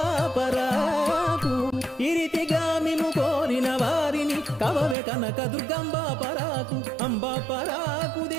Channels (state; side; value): drops out; left; at 5.0 s